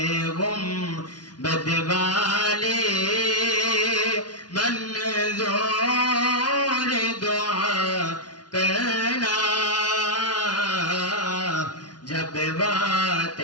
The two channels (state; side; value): late; right; 0.69 ms